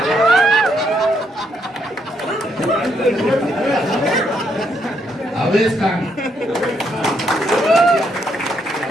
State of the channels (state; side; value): normal; both; correlation 0.75